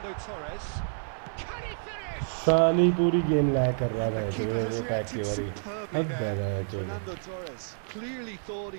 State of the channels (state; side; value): silent; left; 59 dB below the other